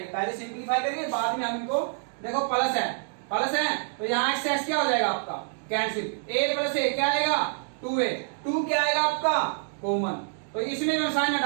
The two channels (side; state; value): left; silent; digital silence